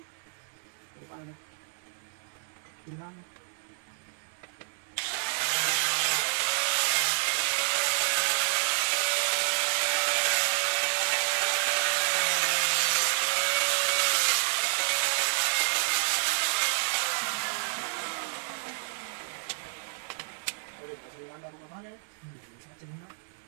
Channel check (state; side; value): silent; left; 58 dB below the other